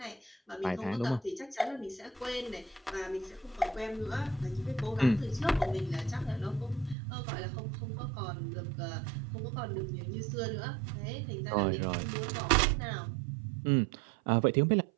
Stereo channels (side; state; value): left; drops out; at 7.0 s